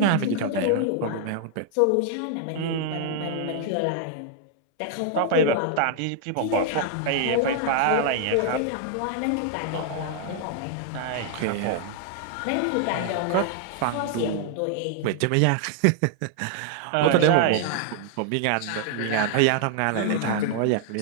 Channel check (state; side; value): different; both; correlation 0.00